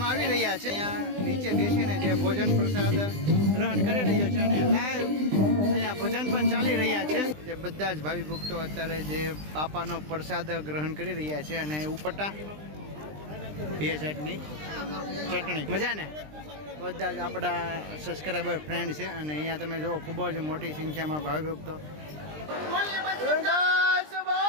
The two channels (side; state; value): left; late; 20 ms